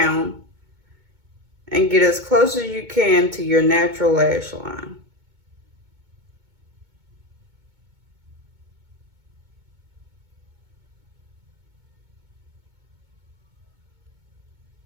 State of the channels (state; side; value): late; left; 2.2 ms